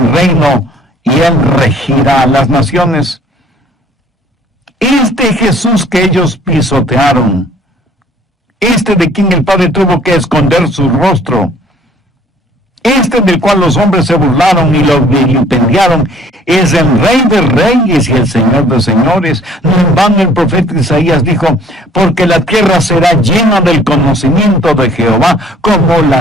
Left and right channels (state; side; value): normal; both; correlation 0.56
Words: reino, y él regirá las naciones. Este Jesús que ellos pisotearon, este de quien el Padre tuvo que esconder su rostro, este del cual los hombres se burlaron y lo vilipendiaron, es el Rey de Reyes y el Señor de Señores. No en vano el profeta Isaías dijo: porque la tierra será llena del conocimiento de Jehová, como